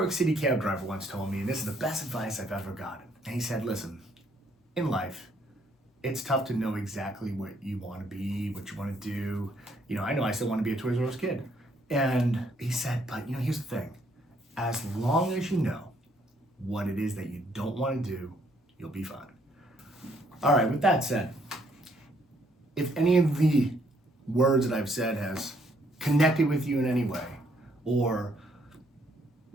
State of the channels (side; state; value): both; normal; correlation 0.68